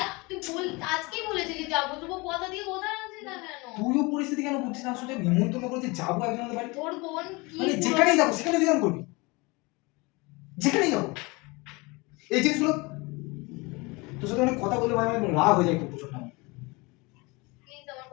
তুই বল, আজকেই বলেছিলি যাবো, তবু কথা দিয়ে কথা রাখছিস না কেন? তুইও পরিস্থিতি কেন বুঝছিস না? আসলে নিমন্ত্রণ করেছি, যাবো একজনের বাড়ি। তোর বোন কি মানে যেখানেই যাবো সেখানে তুই এরকম করবি? যেখানেই যাবো এই জিনিসগুলো তোর সাথে অনেক কথা বলতে আমি রাগ হয়ে যায় খুব প্রচন্ড। প্লিজ আমার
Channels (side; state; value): right; quieter; 25.6 dB